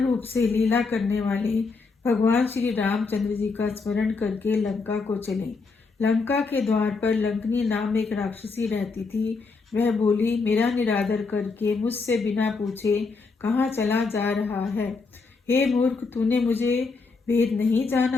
से लीला करने वाले भगवान श्री रामचंद्र जी का स्मरण करके लंका को चले। लंका के द्वार पर लंकनी नाम एक राक्षसी रहती थी। वह बोली, मेरा निरादर करके मुझसे बिना पूछे कहाँ चला जा रहा है। हे मूर्ख, तूने मुझे भेद नहीं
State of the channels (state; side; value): quieter; right; 4.3 dB